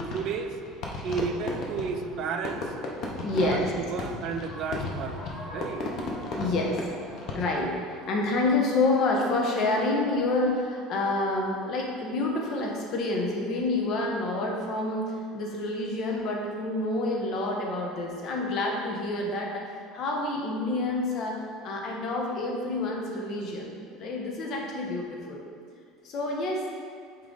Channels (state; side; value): normal; both; correlation 0.30